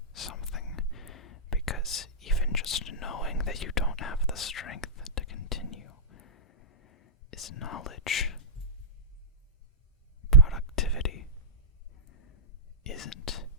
something, because even just knowing that you don't have the strength to continue is is knowledge. Productivity isn't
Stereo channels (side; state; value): both; normal; correlation -0.14